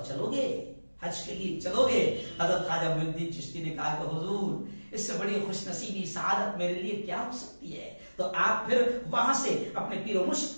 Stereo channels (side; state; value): both; inverted; correlation -1.00